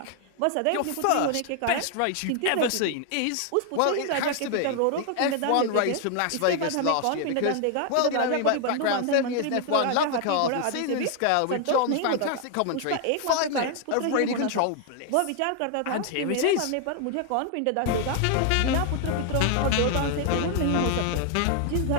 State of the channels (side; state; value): both; different; correlation 0.00